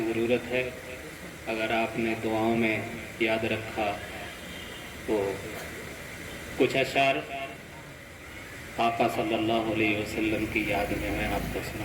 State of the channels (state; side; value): identical; both; correlation 1.00